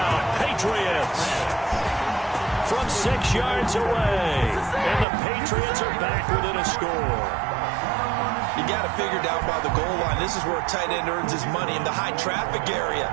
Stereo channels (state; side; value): drops out; left; at 5.1 s